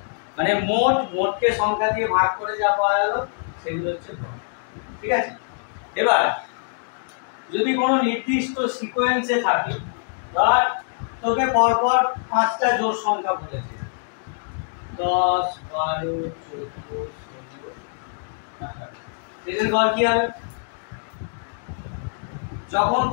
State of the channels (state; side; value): silent; right; digital silence